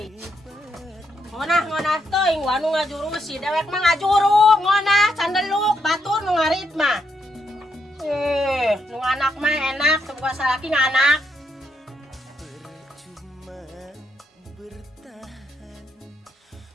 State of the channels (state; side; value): normal; both; correlation 0.79